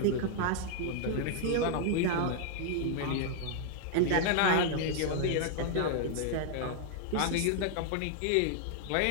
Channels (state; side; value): different; both; correlation 0.00